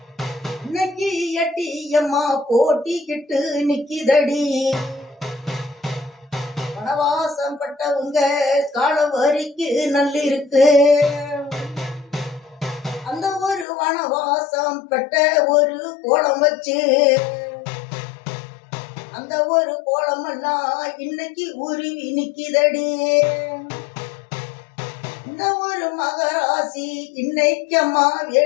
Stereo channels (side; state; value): right; drops out; at 13.7 s